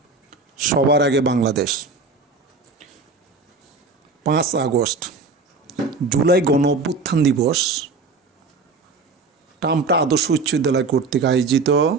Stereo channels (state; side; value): quieter; left; 4.1 dB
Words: সবার আগে বাংলাদেশ। 5 আগস্ট জুলাই গণ অভ্যুত্থান দিবস টামটা আদর্শ উচ্চ বিদ্যালয় কর্তৃক আয়োজিত